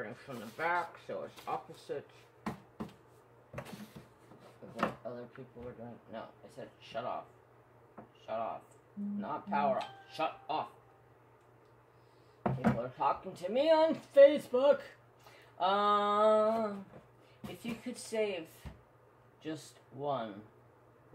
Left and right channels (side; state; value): both; identical; correlation 1.00